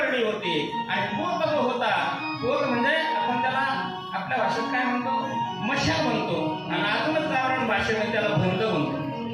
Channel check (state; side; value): identical; both; correlation 1.00